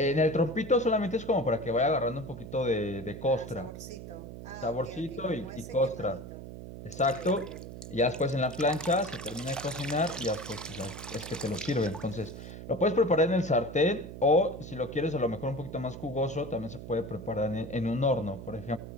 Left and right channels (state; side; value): noise; right; hum, 11 dB below the sound